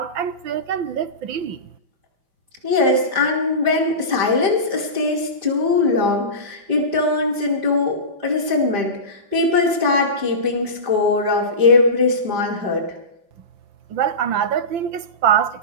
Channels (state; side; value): late; left; 5.0 ms